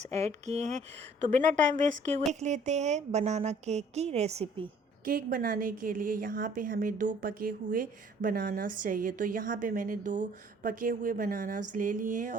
ऐड किए हैं, तो बिना टाइम वेस्ट किए हुए देख लेते हैं बनाना केक की रेसिपी। केक बनाने के लिए यहाँ पे हमें 2 पके हुए बनानास चाहिए। तो यहाँ पे मैंने 2 पके हुए बनानास ले लिए हैं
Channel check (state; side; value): normal; both; correlation 0.56